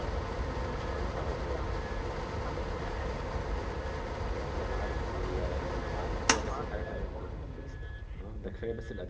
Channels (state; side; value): identical; both; correlation 1.00